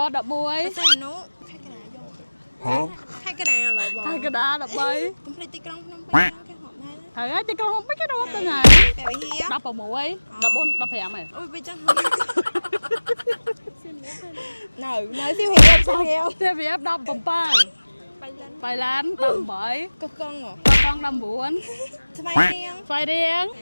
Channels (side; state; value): both; inverted; correlation -1.00